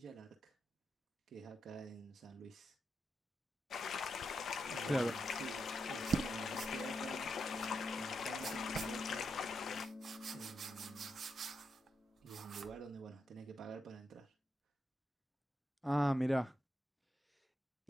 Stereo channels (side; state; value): both; normal; correlation 0.84